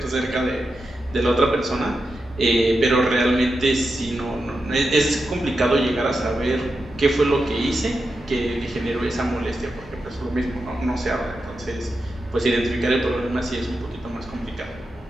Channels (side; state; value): both; normal; correlation 0.89